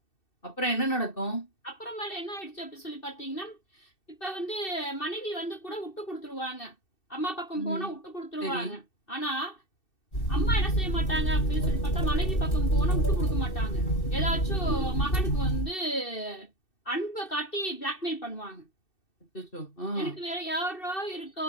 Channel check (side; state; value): right; late; 2.6 ms